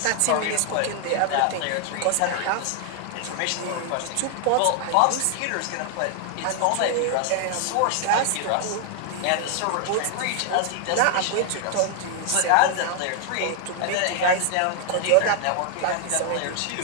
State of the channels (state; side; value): different; both; correlation 0.00